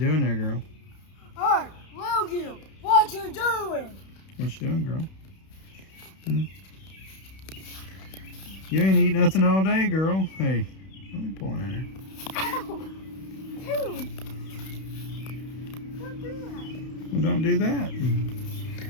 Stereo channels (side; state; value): right; late; 31 ms